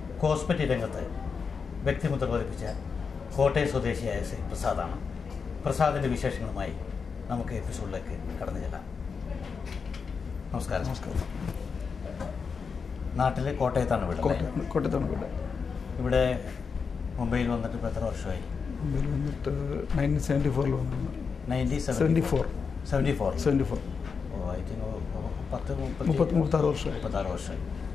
കോസ്മെറ്റിക് രംഗത്ത് വ്യക്തിമുദ്ര പതിപ്പിച്ച കോട്ടയം സ്വദേശിയായ ശ്രീ പ്രസാദാണ്. പ്രസാദിൻ്റെ വിശേഷങ്ങളുമായി നമുക്ക് എപ്പിസോഡിലേക്ക് കടന്നു ചെല്ലാം. നമസ്കാരം. നമസ്കാരം. നാട്ടിലെ കോട്ടയത്താണ് വീട്? കോട്ടയത്താണ് വീട്. ഇവിടെ മുംബൈയിൽ വന്നിട്ട് ഇപ്പോൾ എത്ര വർഷമായി? മുംബൈയിൽ വന്നിട്ട് 1974 വന്നു. 1974. ഓ, ഐ തിങ്ക് 36 വർഷമായി.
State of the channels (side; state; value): right; quieter; 5.5 dB